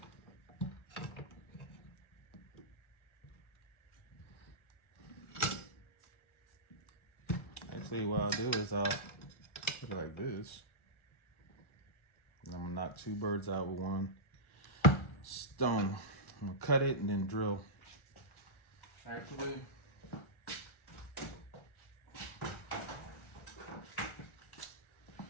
Actually, what I'll do is I'll put it like this. And I'm gonna knock two birds out with one stone. I'm gonna cut it and then drill. Actually,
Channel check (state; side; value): late; right; 1.4 ms